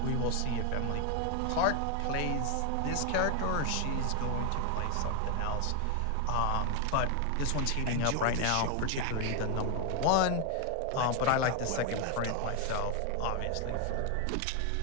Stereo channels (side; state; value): both; different; correlation 0.01